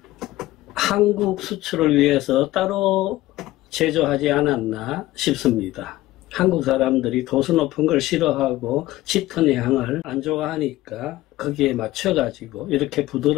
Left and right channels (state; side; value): quieter; right; 16.8 dB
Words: 한국 수출을 위해서 따로 제조하지 않았나 싶습니다. 한국 사람들이 도수 높은 걸 싫어하고 짙은 향을 안 좋아하니까 거기에 맞춰가지고 이렇게